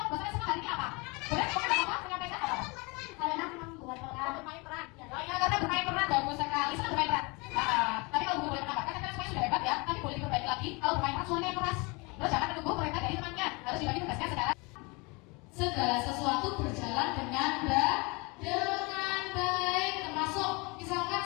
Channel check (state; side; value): quieter; right; 27.8 dB